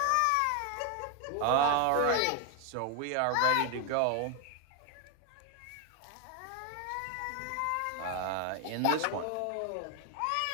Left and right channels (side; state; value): both; different; correlation 0.00